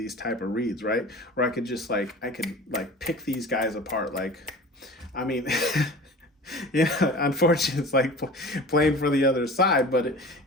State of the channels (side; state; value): both; normal; correlation 0.39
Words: type of reads, right? Where I could just pick these guys apart. Like I mean unfortunately it's like playing for the other side, but